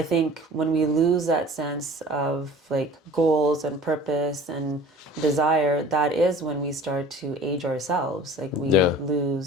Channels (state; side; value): normal; both; correlation 0.45